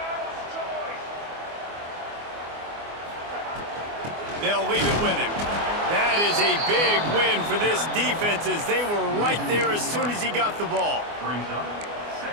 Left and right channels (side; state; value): left; late; 24 ms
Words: They'll leave it with him. That is a big win for this defense as they were right there as soon as he got the ball.